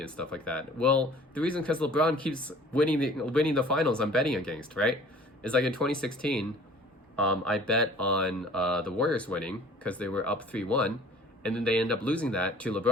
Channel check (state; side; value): normal; both; correlation 0.49